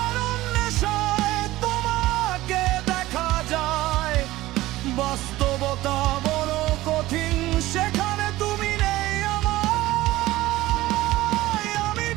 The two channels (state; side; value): quieter; left; 17.2 dB